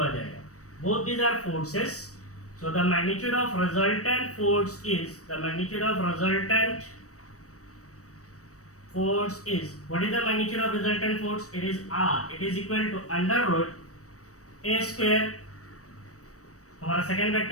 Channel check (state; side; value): late; right; 0.65 ms